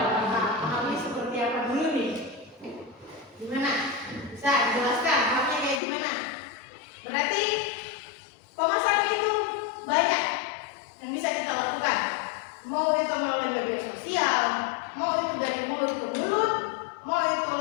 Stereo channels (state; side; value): drops out; right; at 5.8 s